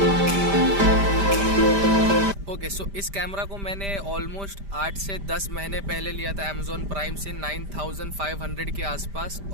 ओके, सो इस कैमरा को मैंने ऑलमोस्ट 8 से 10 महीने पहले लिया था अमेजोन प्राइम से 9500 के आसपास।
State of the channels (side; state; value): left; late; 5.0 ms